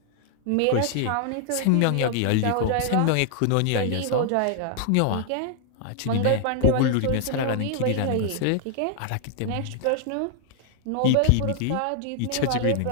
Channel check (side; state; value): both; different; correlation 0.00